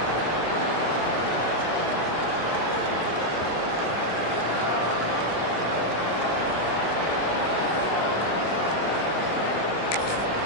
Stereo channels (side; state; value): right; late; 24 ms